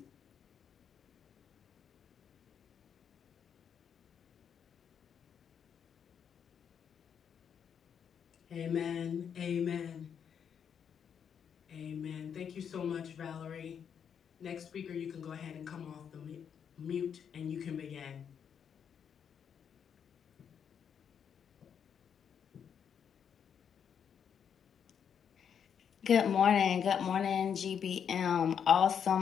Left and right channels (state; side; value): quieter; right; 7.8 dB